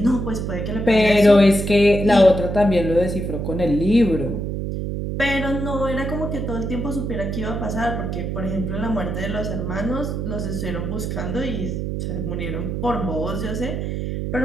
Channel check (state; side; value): noise; right; hum, 3 dB below the sound